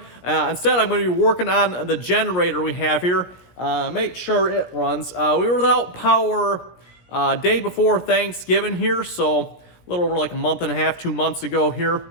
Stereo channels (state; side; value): late; right; 17 ms